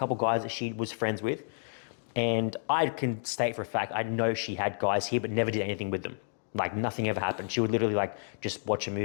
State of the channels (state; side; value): silent; right; digital silence